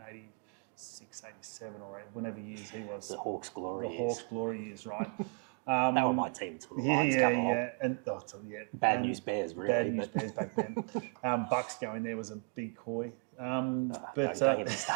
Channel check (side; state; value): left; quieter; 39.1 dB